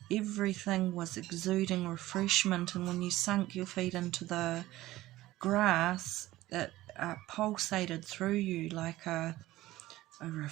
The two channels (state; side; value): quieter; left; 16.6 dB